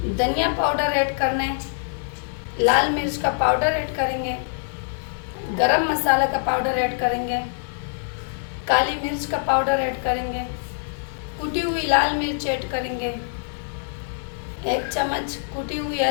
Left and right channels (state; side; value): silent; right; digital silence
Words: धनिया पाउडर ऐड करना है, लाल मिर्च का पाउडर ऐड करेंगे, गरम मसाला का पाउडर ऐड करेंगे, काली मिर्च का पाउडर ऐड करेंगे, कुटी हुई लाल मिर्च ऐड करेंगे, 1 चम्मच कुटी हुई